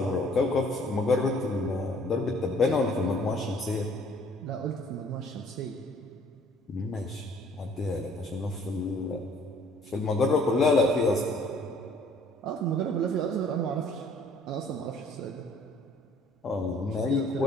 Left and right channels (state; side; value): normal; both; correlation 0.57